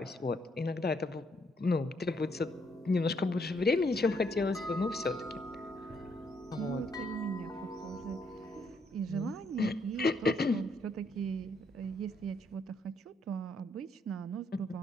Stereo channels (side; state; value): both; normal; correlation 0.72